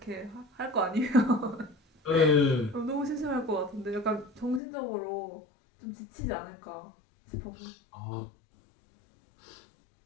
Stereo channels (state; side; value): drops out; right; at 4.6 s